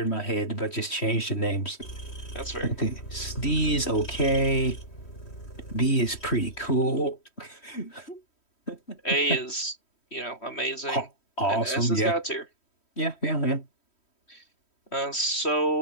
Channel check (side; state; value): right; late; 3.1 ms